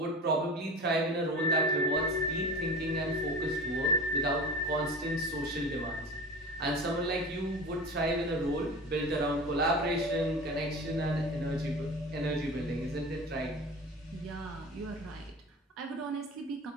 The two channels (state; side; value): normal; both; correlation 0.33